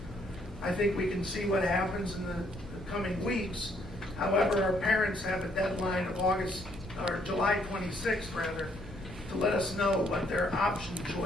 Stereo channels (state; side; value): normal; both; correlation 0.69